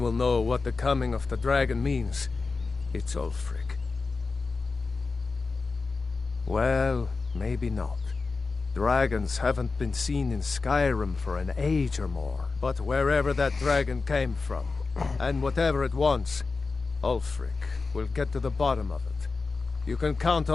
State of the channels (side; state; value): right; quieter; 4.1 dB